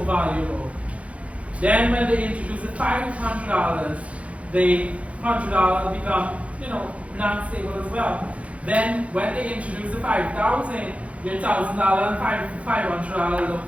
Then when they introduce the $500, the $100 become, not stable as well. Then when they introduce the 5,000, your $1,000 and $500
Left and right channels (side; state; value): left; late; 0.064 ms